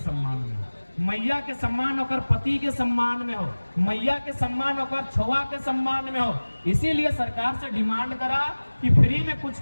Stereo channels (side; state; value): both; inverted; correlation -1.00